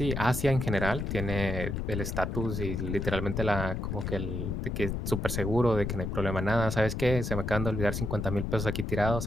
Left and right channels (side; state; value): left; noise; rumble, 3 dB below the sound